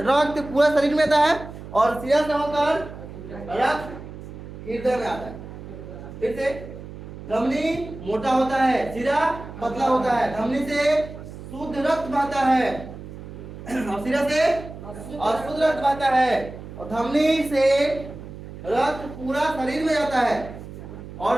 रक्त पूरा शरीर में आता है और सिरा से होकर रक्त हृदय में आता है। फिर से, धमनी मोटा होता है, सिरा पतला होता है। धमनी से शुद्ध रक्त बहता है और सिरा से अशुद्ध रक्त बहता है। और धमनी से रक्त पूरा शरीर में जाता है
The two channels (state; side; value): noise; right; hum, 13 dB below the sound